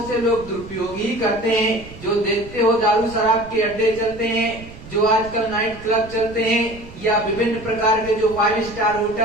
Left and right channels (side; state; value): right; noise; rumble, 17 dB below the sound